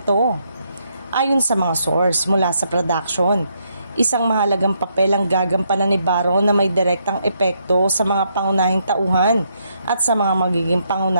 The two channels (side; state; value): both; inverted; correlation -0.75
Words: Ayon sa mga source mula sa production, isang mahalagang papel ang gagampanan ni Baron na may direktang epekto sa mga pangunahing tauhan at sa mga magiging